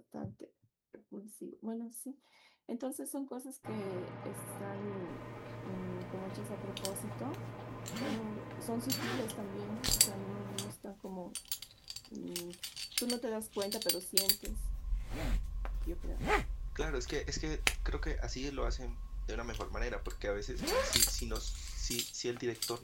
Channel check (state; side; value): identical; both; correlation 1.00